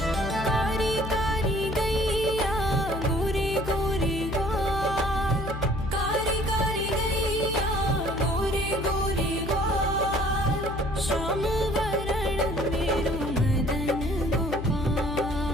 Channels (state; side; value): noise; left; hum, 7 dB below the sound